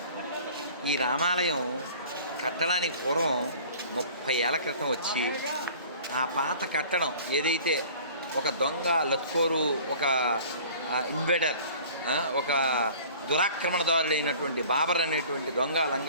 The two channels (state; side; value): inverted; both; correlation -0.46